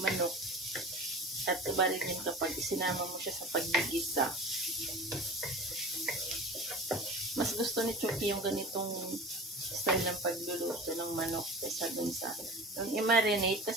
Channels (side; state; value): both; normal; correlation 0.37